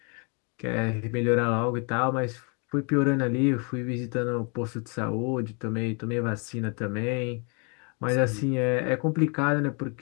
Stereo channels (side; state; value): right; quieter; 35.1 dB